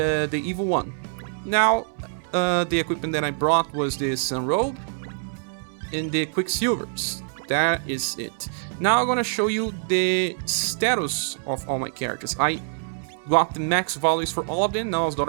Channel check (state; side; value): silent; left; 60 dB below the other